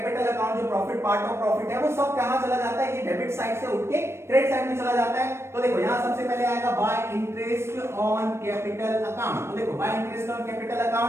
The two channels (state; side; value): late; left; 0.13 ms